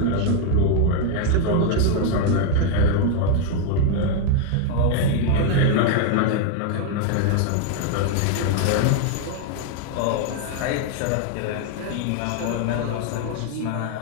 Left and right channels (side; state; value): both; different; correlation 0.00